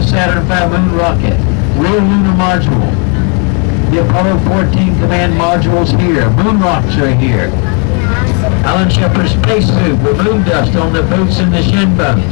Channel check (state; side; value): quieter; right; 37.1 dB